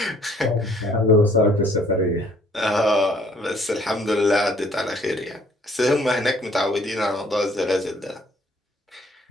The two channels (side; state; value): both; normal; correlation 0.60